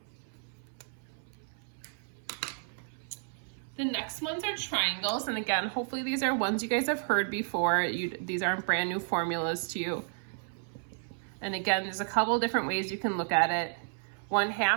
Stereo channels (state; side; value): silent; left; 55 dB below the other